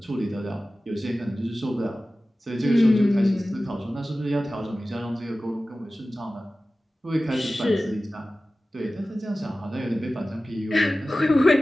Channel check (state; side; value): normal; both; correlation 0.96